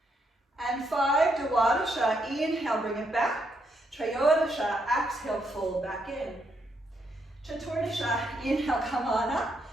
and 5. Dwadasha, inhale, bring it back. Trayodasha, exhale, fold back in. Chaturdasha, inhale, come on up.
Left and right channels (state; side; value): normal; both; correlation 0.77